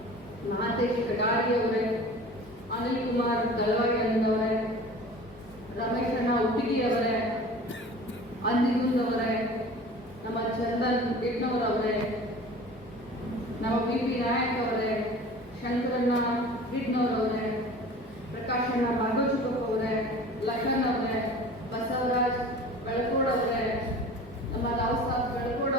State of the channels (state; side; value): normal; both; correlation 0.41